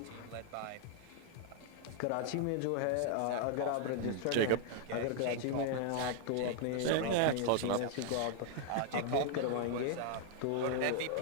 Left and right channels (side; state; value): both; different; correlation 0.00